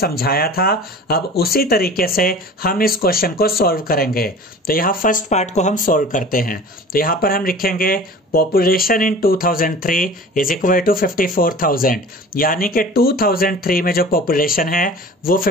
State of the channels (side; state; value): both; normal; correlation 0.40